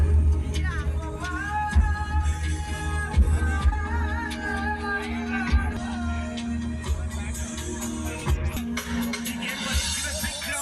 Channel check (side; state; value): both; identical; correlation 1.00